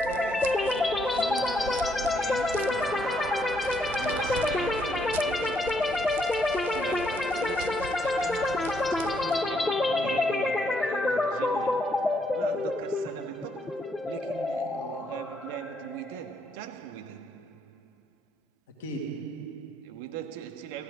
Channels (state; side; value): normal; both; correlation 0.74